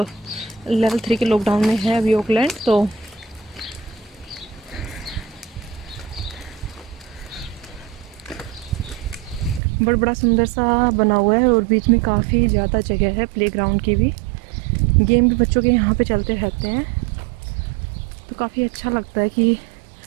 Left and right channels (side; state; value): left; drops out; at 9.6 s